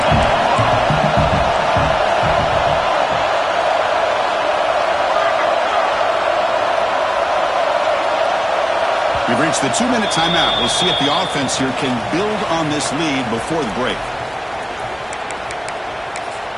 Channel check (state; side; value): identical; both; correlation 1.00